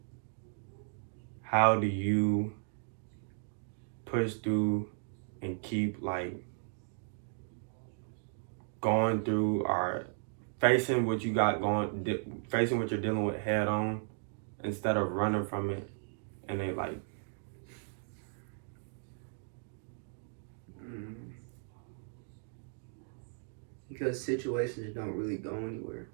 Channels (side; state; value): left; silent; digital silence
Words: how do you push through and keep, like, going through or facing what you got going, facing what you're dealing with head on instead of running from it and then, like, because situations don't really go anywhere,